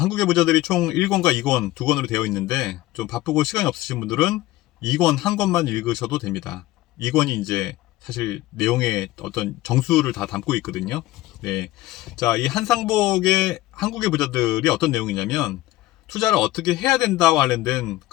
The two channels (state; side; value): quieter; right; 17.0 dB